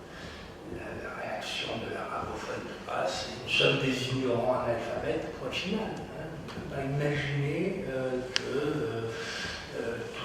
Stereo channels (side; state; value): both; identical; correlation 1.00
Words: la réaction de l'arabophone de base, c'est nous sommes des ignorants analphabètes, point final. Hein. On ne peut pas imaginer que